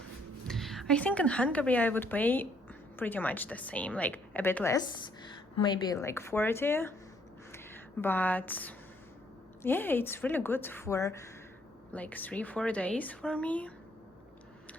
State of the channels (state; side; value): normal; both; correlation 0.67